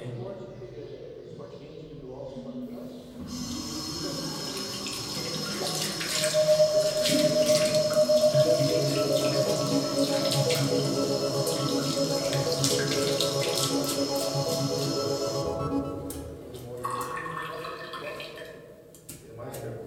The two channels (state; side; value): identical; both; correlation 1.00